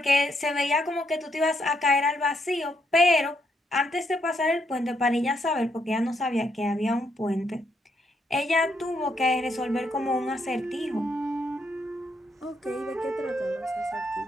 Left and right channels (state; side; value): normal; both; correlation 0.76